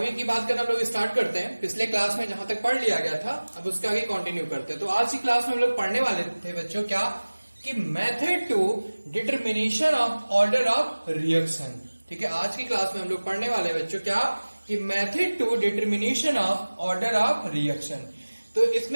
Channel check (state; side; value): inverted; both; correlation -1.00